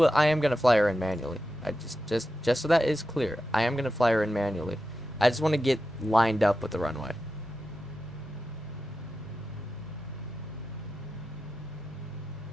I am gonna fly her in manually. Just so that is clear, I am gonna fly her in manually. I just want to get lined up with the runway.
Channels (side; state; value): both; normal; correlation 0.91